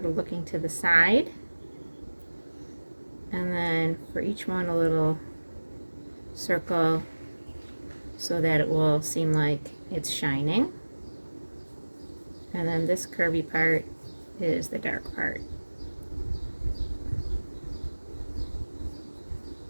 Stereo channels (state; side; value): inverted; both; correlation -1.00